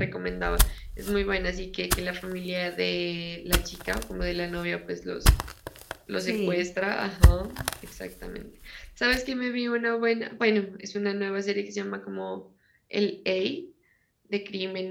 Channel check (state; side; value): identical; both; correlation 1.00